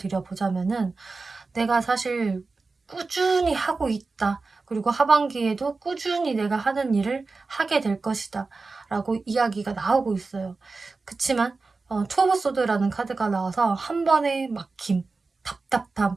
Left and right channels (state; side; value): quieter; left; 3.9 dB